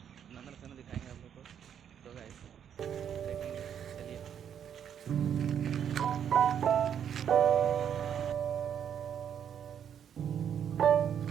नंदनकानन दिखाएंगे आप लोग को, तो गाइस देखेंगे। चलिए।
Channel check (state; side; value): quieter; left; 8.7 dB